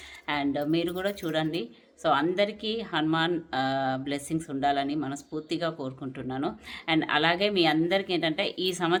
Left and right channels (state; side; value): identical; both; correlation 1.00